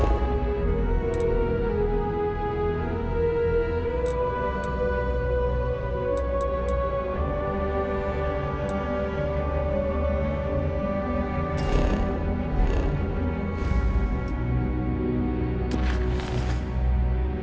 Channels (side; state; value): both; identical; correlation 1.00